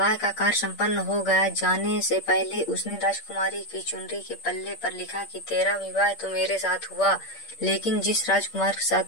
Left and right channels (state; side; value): late; right; 8.6 ms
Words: का कार्य संपन्न हो गया, जाने से पहले उसने राजकुमारी की चुनरी के पल्ले पर लिखा कि तेरा विवाह तो मेरे साथ हुआ, लेकिन जिस राजकुमार के साथ